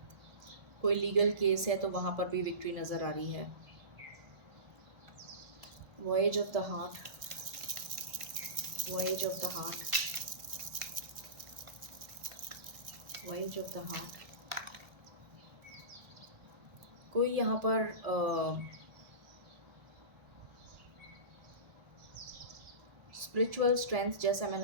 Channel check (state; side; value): late; left; 1.4 ms